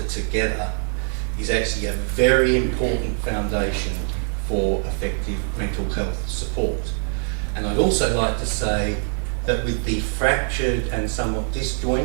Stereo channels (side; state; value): left; silent; 62 dB below the other